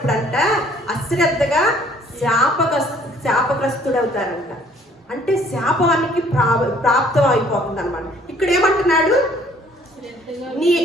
అశ్రద్ధగా శాపగ్రస్తుడవుతారంట. అంటే శాపానికి ప్రాప్తం అయిపోతుంది అనమాట. ఇక్కడ ఏమంటున్నాడు,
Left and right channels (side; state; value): both; normal; correlation 0.59